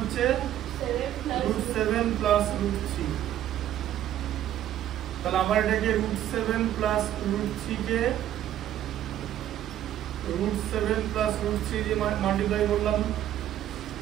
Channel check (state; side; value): quieter; left; 11.9 dB